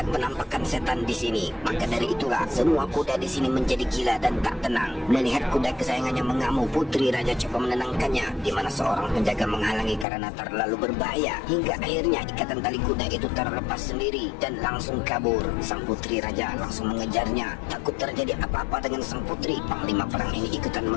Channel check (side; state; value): right; drops out; at 10.1 s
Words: penampakan setan di sini. Maka dari itulah semua kuda di sini menjadi gila dan tak tenang. Melihat kuda kesayangannya mengamuk, Putri Raja coba menenangkannya, di mana seorang penjaga menghalangi karena terlalu berbahaya. Hingga akhirnya ikatan tali kuda itu terlepas sendiri dan langsung kabur. Sang Putri Raja langsung mengejarnya. Takut terjadi apa-apa dengan sang putri, Panglima Perang ini ikutan